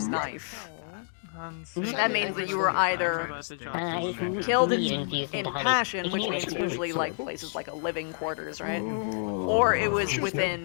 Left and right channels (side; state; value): right; silent; digital silence